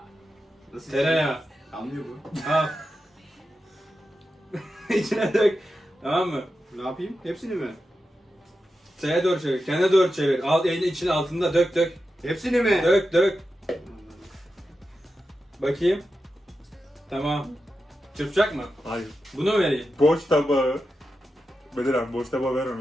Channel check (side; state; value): both; normal; correlation 0.90